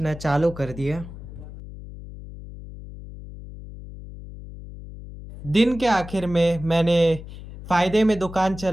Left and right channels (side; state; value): left; noise; hum, 14 dB below the sound